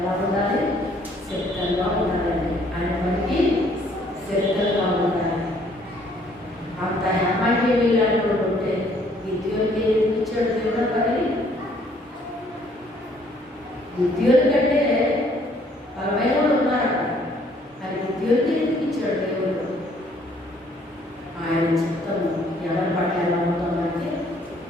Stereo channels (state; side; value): normal; both; correlation 0.63